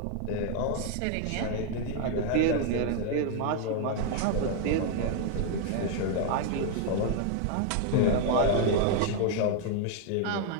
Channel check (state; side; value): different; both; correlation 0.00